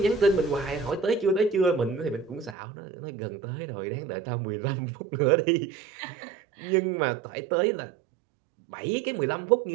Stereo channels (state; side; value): drops out; left; at 2.6 s